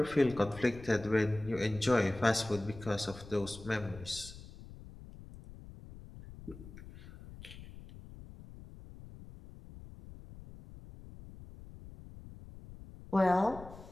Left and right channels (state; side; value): noise; left; rumble, 16 dB below the sound